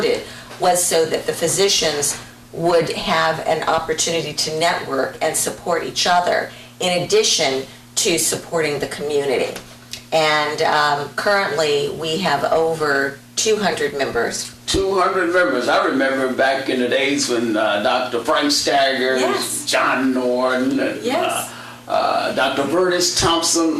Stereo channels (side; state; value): both; identical; correlation 1.00